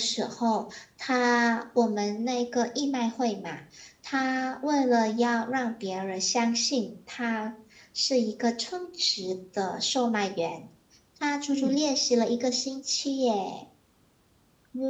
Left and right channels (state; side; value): identical; both; correlation 1.00